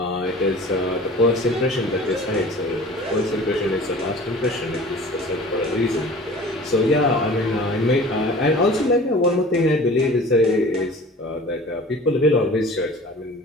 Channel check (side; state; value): both; normal; correlation 0.43